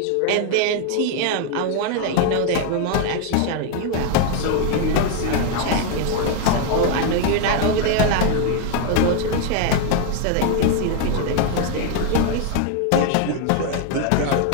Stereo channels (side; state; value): both; different; correlation 0.00